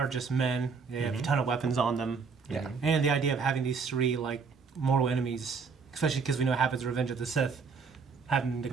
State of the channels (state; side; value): quieter; left; 5.3 dB